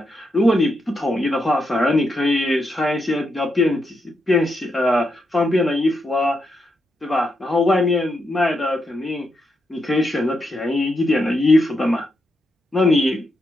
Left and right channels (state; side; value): normal; both; correlation 0.82